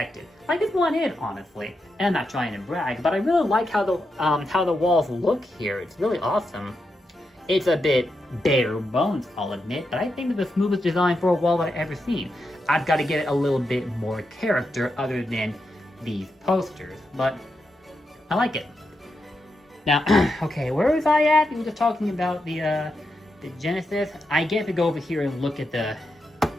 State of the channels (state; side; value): normal; both; correlation 0.86